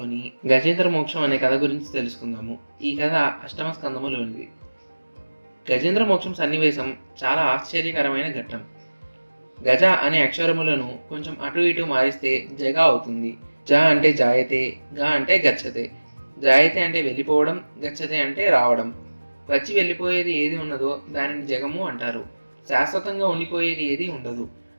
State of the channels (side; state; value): both; inverted; correlation -1.00